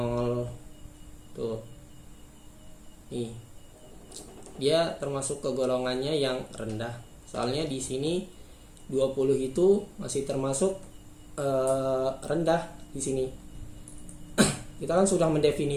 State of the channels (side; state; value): both; identical; correlation 1.00